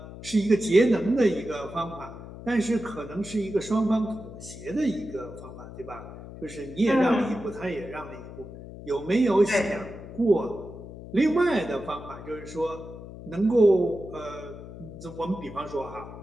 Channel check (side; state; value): left; noise; hum, 13 dB below the sound